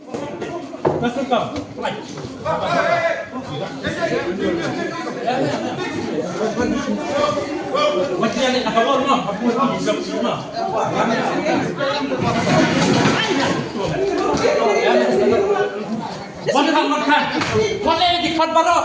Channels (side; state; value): both; identical; correlation 1.00